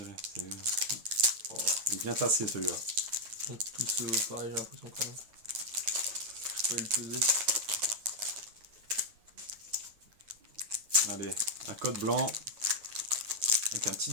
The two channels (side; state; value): left; late; 9.4 ms